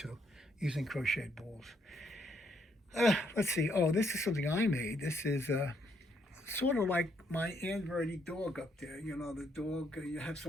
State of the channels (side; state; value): both; normal; correlation 0.73